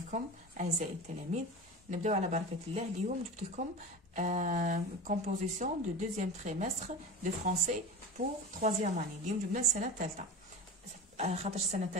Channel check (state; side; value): normal; both; correlation 0.30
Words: اعزائي التلاميذ. نبداو على بركه الله. اليوم جبت لكم كومبوزيسيون دو دوزيام تريمستر دو فرونسي بور تروازيام اني. اليوم جبنا السنه الثالثه، خاطر السنه